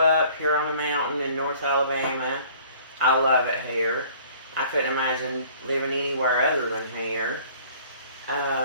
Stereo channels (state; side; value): inverted; both; correlation -0.53